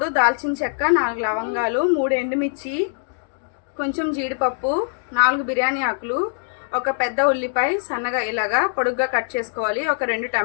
దాల్చిన చెక్క, 4 లవంగాలు, 3 ఎండుమిర్చి, కొంచెం జీడిపప్పు, 4 బిర్యానీ ఆకులు, ఒక పెద్ద ఉల్లిపాయ సన్నగా ఇలాగా పొడుగ్గా కట్ చేసుకోవాలి. ఒక 2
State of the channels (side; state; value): right; silent; digital silence